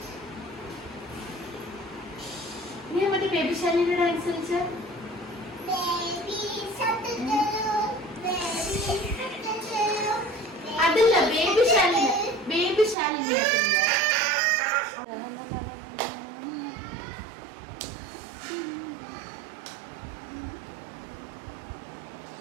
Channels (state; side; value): drops out; left; at 13.0 s